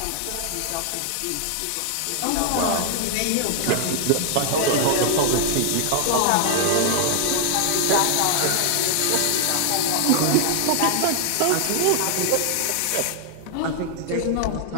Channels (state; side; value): different; both; correlation 0.00